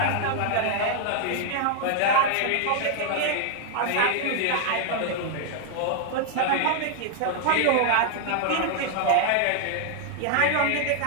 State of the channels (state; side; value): different; both; correlation 0.00